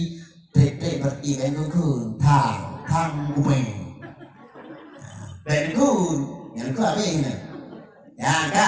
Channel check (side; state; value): both; identical; correlation 1.00